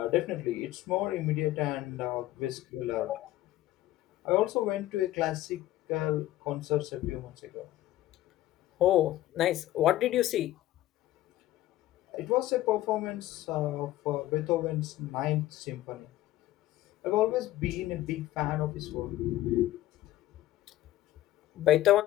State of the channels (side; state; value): right; quieter; 15.0 dB